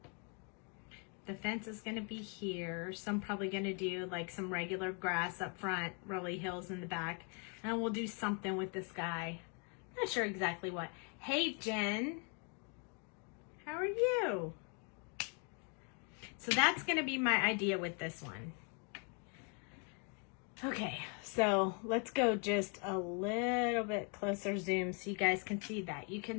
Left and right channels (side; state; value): right; quieter; 37.8 dB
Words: The fence is going to be here. So I'm probably going to do like some regular grass up front, rolly hills in the back. And we'll do something with this guy. Not sure exactly what. Hey, Jen. How are you? So that's going to be my idea with this one. Okay, so let's go just a little bit closer zoom so you guys can see that. You